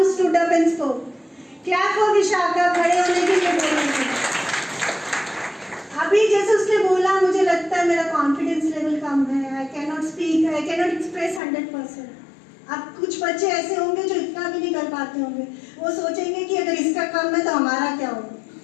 stood up and spoke. Clap for Vishakha. खड़े होने के लिए बोलेंगे. अभी जैसे उसने बोला, मुझे लगता है मेरा कॉन्फिडेंस लेवल कम है. I cannot speak. I cannot express 100%. अब कुछ बच्चे ऐसे होंगे जो इतना भी नहीं कर पाते होंगे. वो सोचेंगे कि अगर इसका कम है तो हमारा क्या होगा,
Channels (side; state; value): right; drops out; at 11.4 s